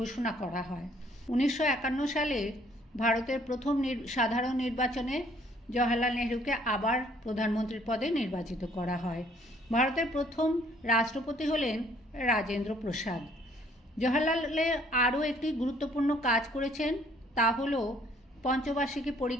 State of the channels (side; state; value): both; normal; correlation 0.61